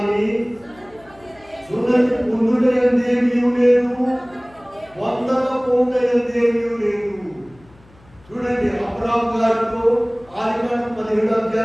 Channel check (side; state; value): left; noise; hum, 28 dB below the sound